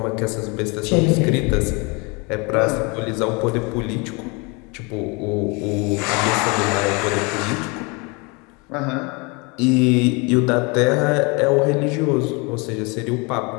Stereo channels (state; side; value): quieter; right; 29.3 dB